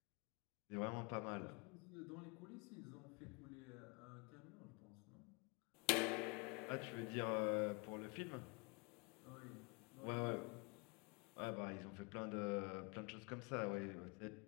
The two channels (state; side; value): quieter; right; 30.7 dB